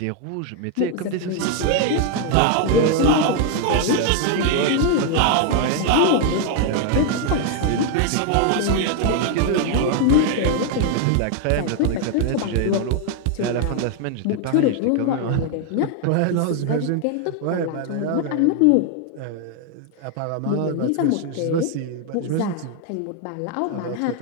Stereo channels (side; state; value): both; different; correlation 0.00